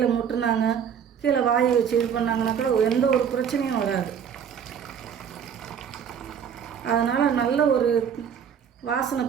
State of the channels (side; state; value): left; quieter; 7.8 dB